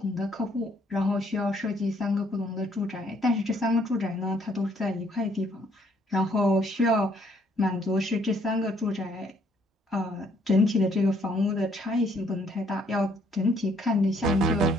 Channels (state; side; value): normal; both; correlation 0.66